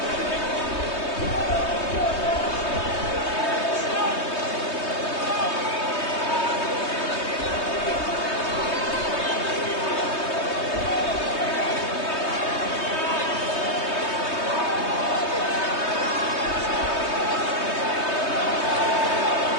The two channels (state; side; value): late; right; 3.2 ms